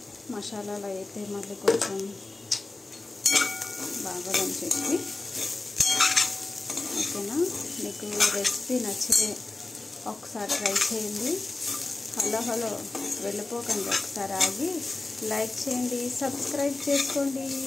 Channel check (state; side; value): quieter; right; 3.2 dB